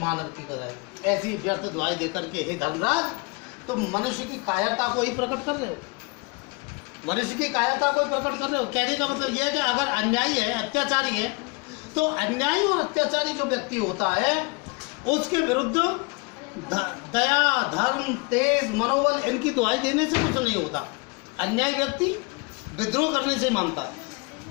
की कदर। ऐसी व्यर्थ दुहाई दे करके हे धर्मराज तुम मनुष्य की कायरता को ही प्रकट कर रहे हो, मनुष्य की कायरता को ही प्रकट कर रहे हो। कहने का मतलब यह है कि अगर अन्यायी है, अत्याचारी है, तो अन्यायी और अत्याचारी जो व्यक्ति होता है उसके विरुद्ध दया धर्म तेज मनोबल इनकी दुहाई देने से कुछ नहीं होता। अन्यायी व्यक्ति विद्रोह करने से मानता है,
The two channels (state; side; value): quieter; right; 28.6 dB